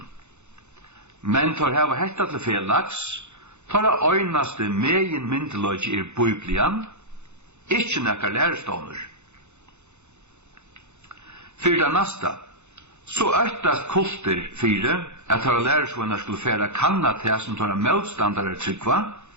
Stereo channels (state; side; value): late; left; 0.83 ms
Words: Men tar hava hetta til felags, tar øynaste megin myndiløgi biblian, ikkje nekkar lærestånur. Fyrir det nasta, så øktast kulter fyrir at tar læresvunnar skulle færa kanna til som tar motstandare tryggva,